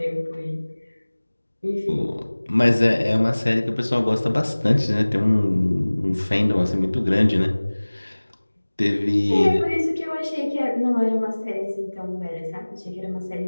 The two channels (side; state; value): both; inverted; correlation -1.00